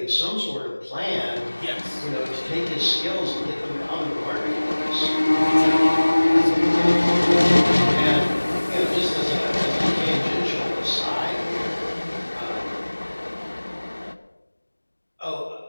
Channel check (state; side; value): inverted; both; correlation -1.00